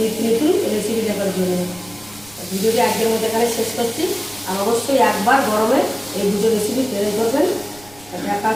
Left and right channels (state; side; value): noise; right; rumble, 24 dB below the sound